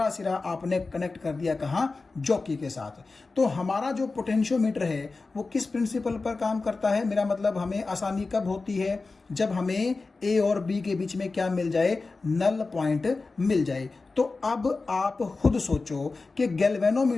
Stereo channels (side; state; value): right; quieter; 3.8 dB